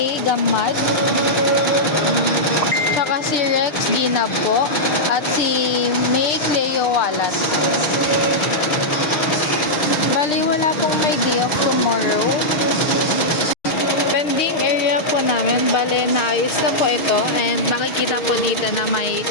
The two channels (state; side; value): late; right; 6.5 ms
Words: Gamad, tsaka si Rex Ginab po, at si May Cleo Walat. Bali, wala pong may day off tomorrow. Pending area po namin, bale naayos na po ito, and makikita po dito na may